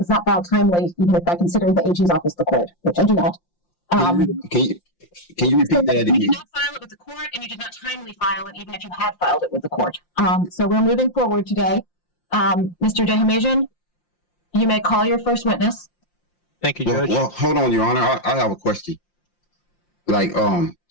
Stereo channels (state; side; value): late; right; 5.7 ms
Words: not filed timely, even if I consider the AG's office the court, which I do not. Can you repeat that You again? did not file it with the court and you did not timely file it, even if you had filed it with the court. So we're moving forward today. Mr. Dehamajian, you may call your first witness. Thank you, Judge. Well, hold on, Your Honor. I have a question. Like,